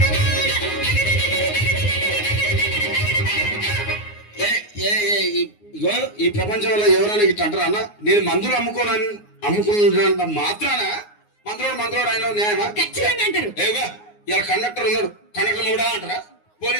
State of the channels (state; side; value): late; right; 9.6 ms